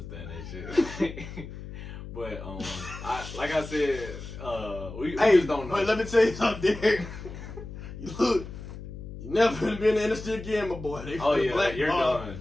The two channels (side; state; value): left; noise; hum, 11 dB below the sound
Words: that shit. But like I said, we just don't know. But let me tell you something, Derek. Look, you never gonna be in the industry again, my boy. They you're done.